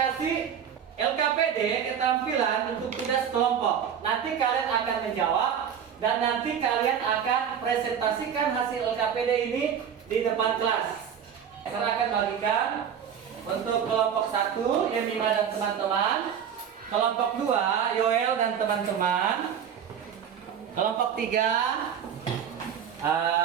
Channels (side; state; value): left; quieter; 8.2 dB